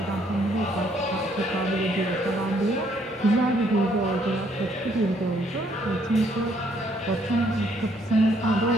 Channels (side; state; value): both; normal; correlation 0.68